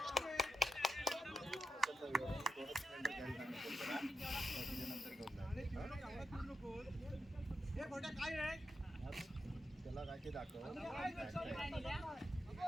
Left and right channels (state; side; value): normal; both; correlation 0.87